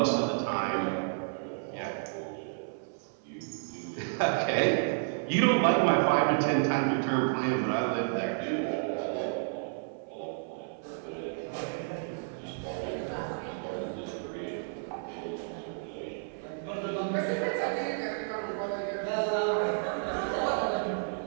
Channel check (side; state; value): left; silent; 57 dB below the other